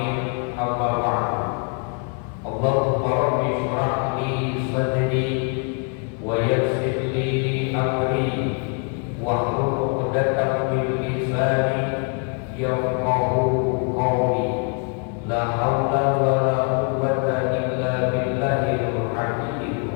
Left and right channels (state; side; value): quieter; right; 39.5 dB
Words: Amma ba'd. Allahumma rabbi shrah li sadri wa yassir li amri wahlul 'uqdatam min lisani yafqahu qawli. La haula wa la quwwata illa billahil